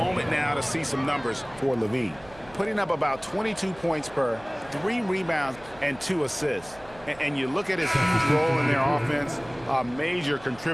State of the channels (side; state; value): right; noise; hum, 22 dB below the sound